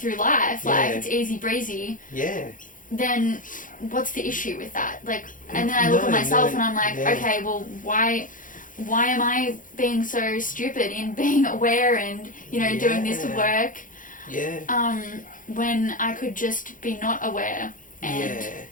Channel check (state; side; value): late; right; 0.39 ms